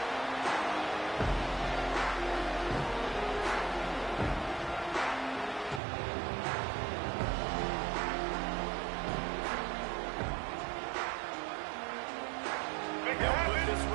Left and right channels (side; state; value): left; drops out; at 5.8 s